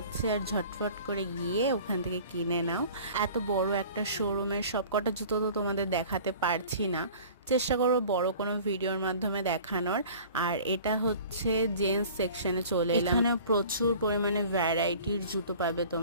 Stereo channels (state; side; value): inverted; both; correlation -0.45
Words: আর ঝটফট করে গিয়ে ওখান থেকে কিনে নাও। এত বড় একটা শোরুমের সবকটা জুতো তো তোমাদের দেখাতে পারছি না, চেষ্টা করবো বড় কোনো ভিডিওর মাধ্যমে দেখানোর। আর এটা হচ্ছে জেন্টস সেকশনে চলে এলাম। এখানে প্রচুর পরিমাণে ভ্যারাইটির জুতো পাবে